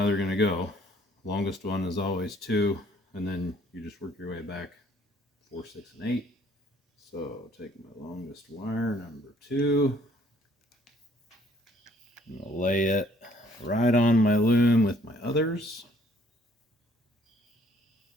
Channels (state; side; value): normal; both; correlation 0.61